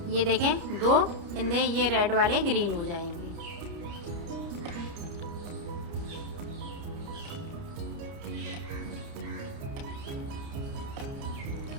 ये देखें 2 फिंदे ये रेड वाले ग्रीन हो जाएंगे।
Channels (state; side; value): late; left; 30 ms